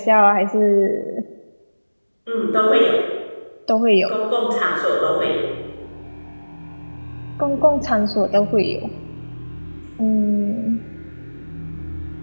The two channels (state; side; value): inverted; both; correlation -1.00